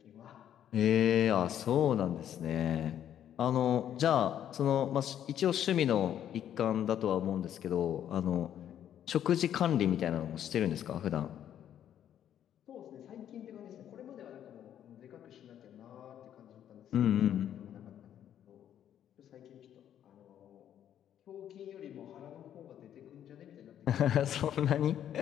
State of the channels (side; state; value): right; quieter; 10.3 dB